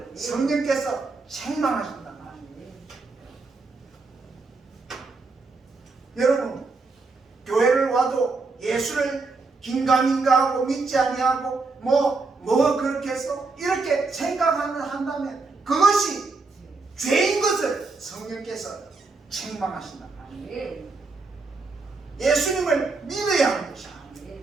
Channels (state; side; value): quieter; left; 3.9 dB